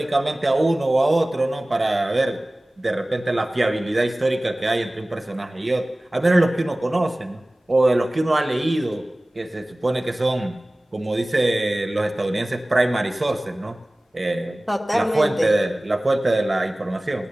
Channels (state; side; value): normal; both; correlation 0.98